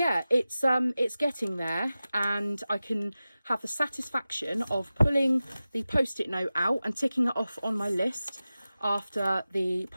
it's getting there, and I can have the satisfaction of pulling the post-it note out and ticking it off on my list after the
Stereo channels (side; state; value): both; inverted; correlation -0.95